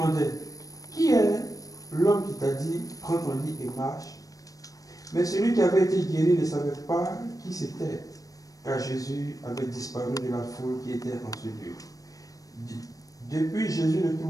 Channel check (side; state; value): right; late; 0.17 ms